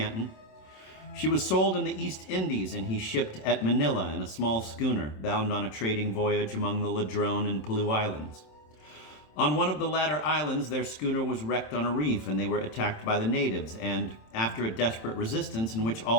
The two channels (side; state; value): right; late; 27 ms